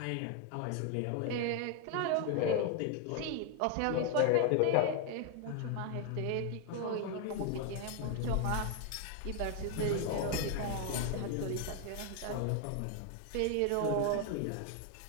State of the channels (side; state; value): both; different; correlation 0.00